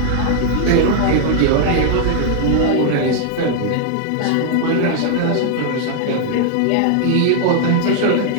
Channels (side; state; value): both; different; correlation -0.01